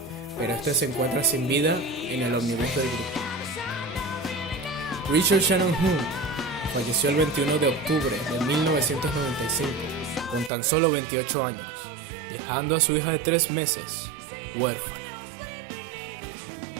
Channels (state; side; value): drops out; left; at 10.5 s